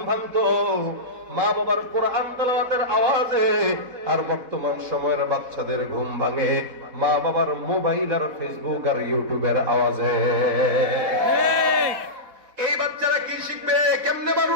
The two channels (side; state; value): left; late; 4.1 ms